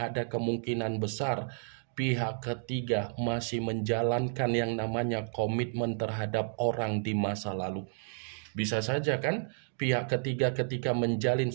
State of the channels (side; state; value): left; silent; digital silence